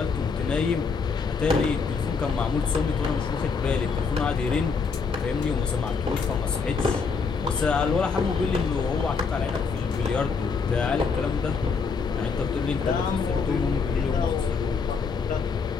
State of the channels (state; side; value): quieter; right; 5.2 dB